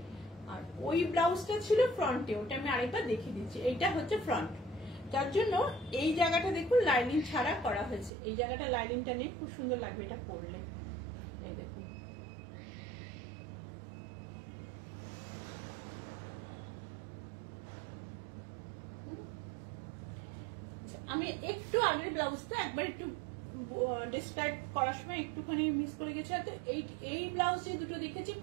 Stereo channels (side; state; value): left; drops out; at 8.1 s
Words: আর ওই ব্লাউজটা ছিল ফ্রন্টে। ওটা আমি আরেকবার দেখিয়ে দিচ্ছি। এইটা হচ্ছে ফ্রন্ট, তার জন্য এই জায়গাটা দেখুন লাইনিং ছাড়া করা হয়েছে। এই জায়গাটা লাইনিংটা নেই, খুব সুন্দর লাগবে এটা পরলে। এই দেখুন, আমি একটু আগের ব্লাউজটা একবার একটু ডিসক্রাইব করার সময় একটুখানি মিস করে গেছি। এই ব্লাউজ যে দুটো দেখেছি